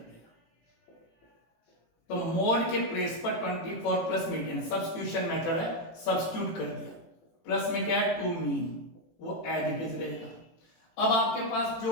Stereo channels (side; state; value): right; late; 18 ms